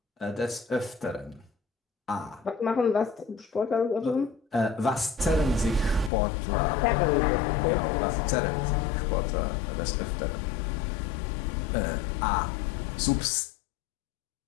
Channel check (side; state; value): right; drops out; at 6.1 s